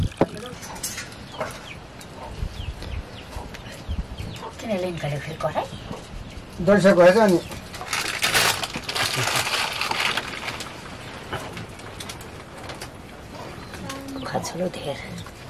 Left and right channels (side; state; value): both; identical; correlation 1.00